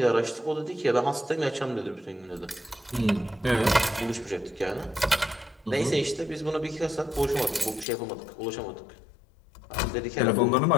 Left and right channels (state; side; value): drops out; right; at 7.9 s